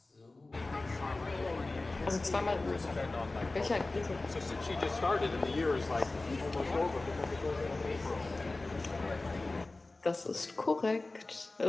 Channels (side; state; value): right; quieter; 3.2 dB